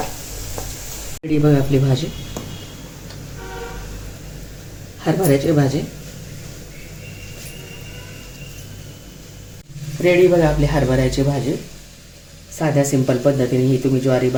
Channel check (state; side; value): identical; both; correlation 1.00